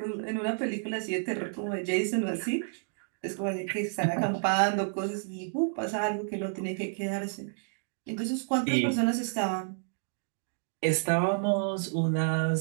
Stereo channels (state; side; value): silent; left; digital silence